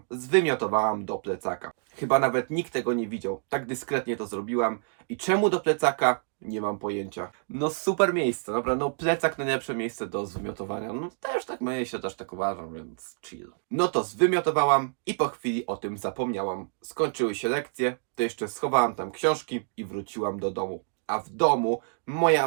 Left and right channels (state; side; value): silent; left; digital silence